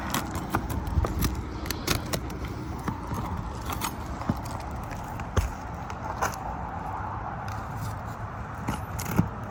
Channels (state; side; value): identical; both; correlation 1.00